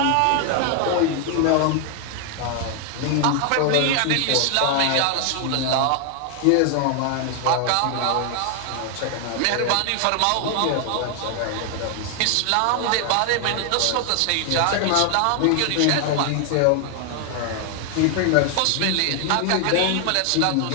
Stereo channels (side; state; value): both; different; correlation 0.00